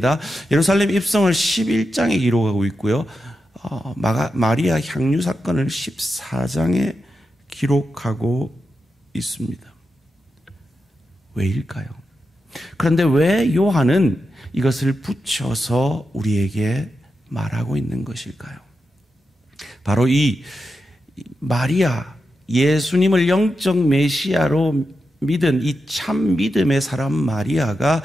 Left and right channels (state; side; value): normal; both; correlation 0.88